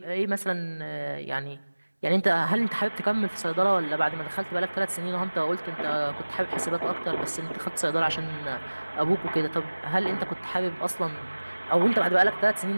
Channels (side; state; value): both; inverted; correlation -1.00